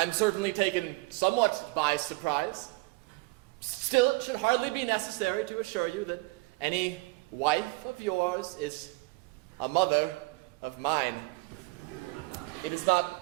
certainly taken somewhat by surprise. Still, it should hardly be necessary to assure you that any wife of yours is a mother of mine. It is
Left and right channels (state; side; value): quieter; left; 23.5 dB